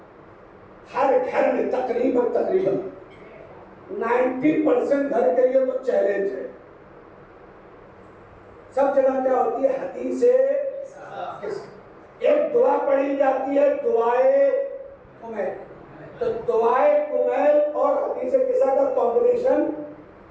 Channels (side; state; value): both; identical; correlation 1.00